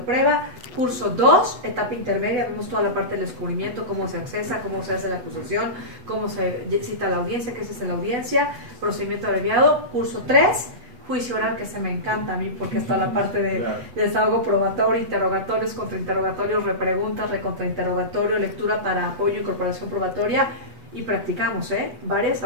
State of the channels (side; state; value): left; late; 8.1 ms